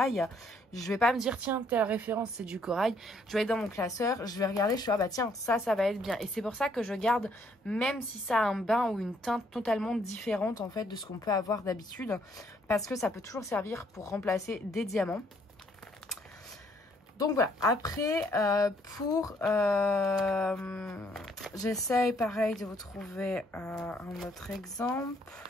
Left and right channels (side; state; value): both; normal; correlation 0.67